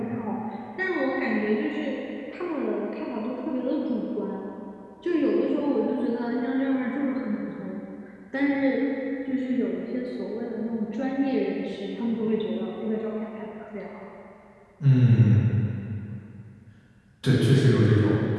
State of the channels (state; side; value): identical; both; correlation 1.00